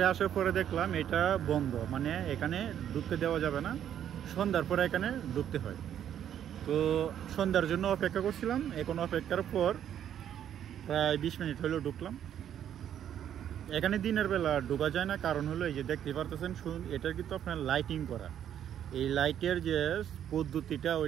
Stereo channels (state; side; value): quieter; left; 10.0 dB